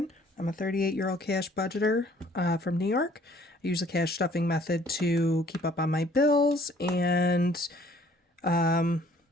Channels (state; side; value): normal; both; correlation 0.58